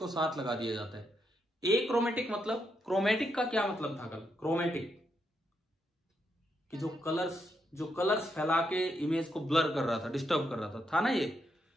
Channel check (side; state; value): both; normal; correlation 0.80